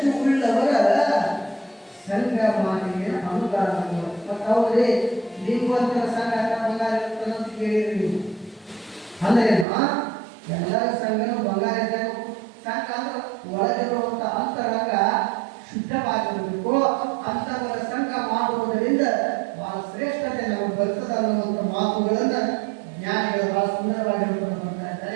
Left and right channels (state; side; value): drops out; left; at 9.7 s